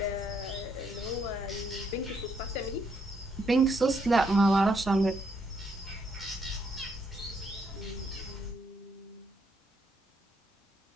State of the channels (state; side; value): normal; both; correlation 0.74